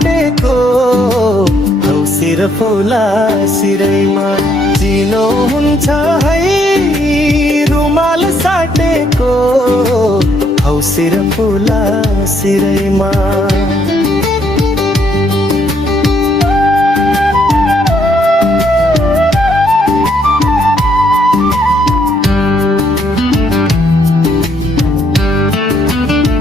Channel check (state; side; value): normal; both; correlation 0.70